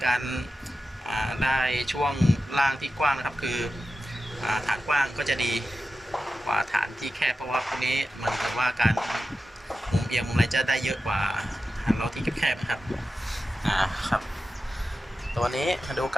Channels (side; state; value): both; normal; correlation 0.92